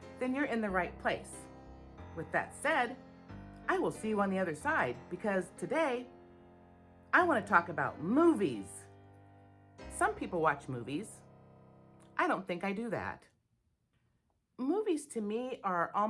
then you're in the right place. With that said, I will see you on the other side because today I want to talk about movies. Some people watch movies. I don't think I do that. Movies to me are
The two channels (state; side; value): identical; both; correlation 1.00